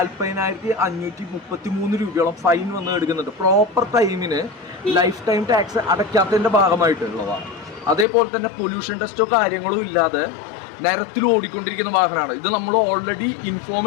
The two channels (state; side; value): drops out; right; at 8.1 s